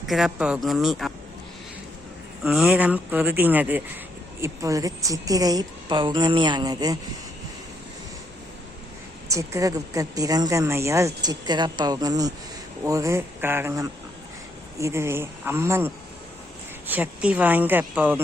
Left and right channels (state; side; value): normal; both; correlation 0.74